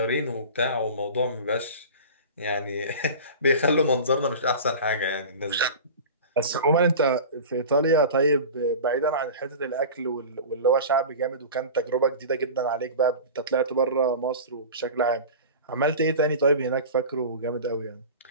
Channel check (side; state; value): both; inverted; correlation -0.34